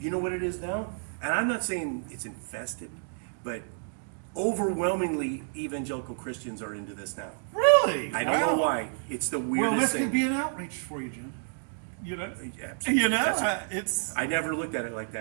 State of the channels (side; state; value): left; silent; digital silence